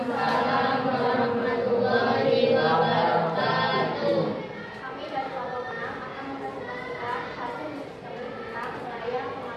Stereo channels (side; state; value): both; identical; correlation 1.00